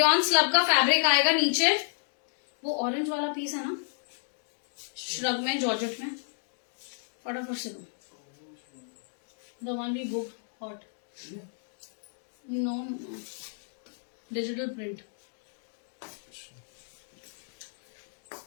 स्लब का फैब्रिक आएगा नीचे. वो ऑरेंज वाला पीस है ना श्रग में, जॉर्जेट में. फटाफट से दो. The one we book hot. No digital print.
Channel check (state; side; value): silent; right; digital silence